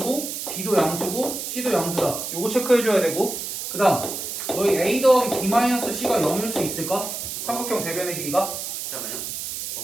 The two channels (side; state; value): right; noise; hiss, 5 dB below the sound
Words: B도 양수고 C도 양수다. 요거 체크해줘야 되고 그 다음 너희 A 더하기 B-C가 0일 수 있을까? 삼각형 세변의 길이가? 잠깐만요.